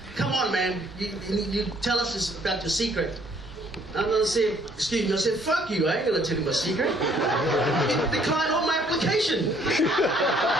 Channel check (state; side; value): noise; left; hum, 26 dB below the sound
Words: come on, man, you tell us this about your secret. I'm going to say, excuse me, I said, fuck you, I ain't going to tell you my secret. Decline all my application. I